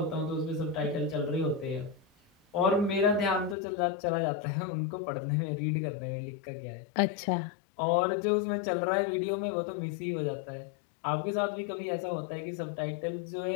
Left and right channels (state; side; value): drops out; right; at 3.6 s